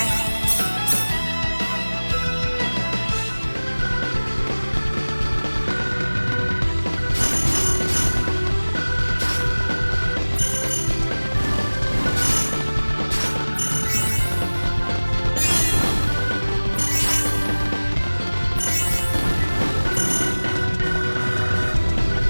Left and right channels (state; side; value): inverted; both; correlation -1.00